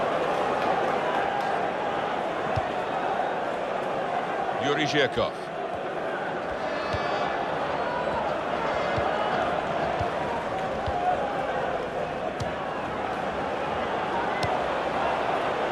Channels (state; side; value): identical; both; correlation 1.00